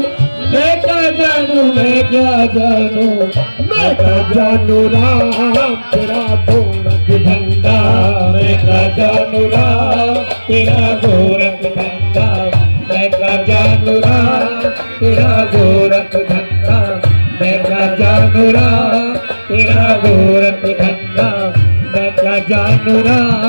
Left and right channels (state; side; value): inverted; both; correlation -1.00